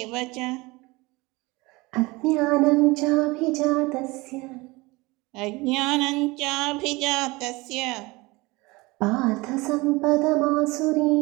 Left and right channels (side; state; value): left; quieter; 23.1 dB